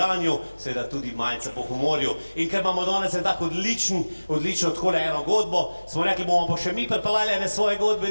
seveda tudi malce po humorju. In ker imamo danes en tak odlično takole eno godbo, smo rekli, bomo pa še mi pripeljali ene svoje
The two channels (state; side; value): inverted; both; correlation -1.00